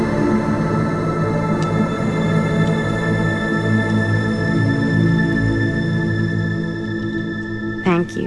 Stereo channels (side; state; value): both; identical; correlation 1.00